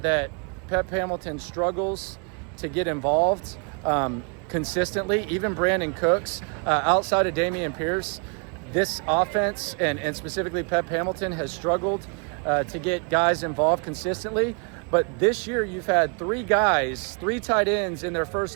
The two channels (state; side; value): quieter; left; 38.3 dB